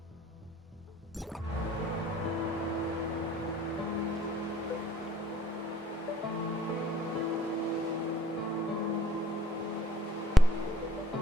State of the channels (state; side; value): normal; both; correlation 0.58